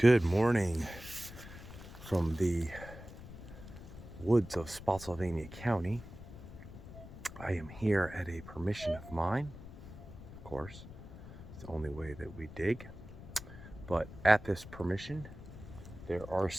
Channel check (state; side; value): noise; left; rumble, 14 dB below the sound